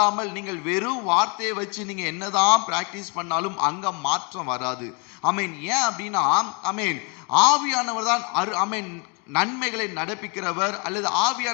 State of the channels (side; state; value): right; quieter; 33.6 dB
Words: நீங்கள் வெறும் வார்த்தையை வச்சு நீங்க என்னதான் பிராக்டிஸ் பண்ணாலும் அங்க மாற்றம் வராது. ஆமென். ஏன் அப்படின்னா ஆமென் ஆவியானவர் தான் ஆமென் நன்மைகளை நடப்பிக்கிறவர் அல்லது